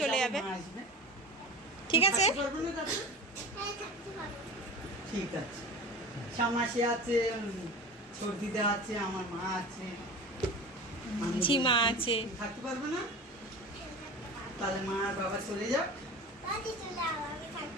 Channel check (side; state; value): both; normal; correlation 0.33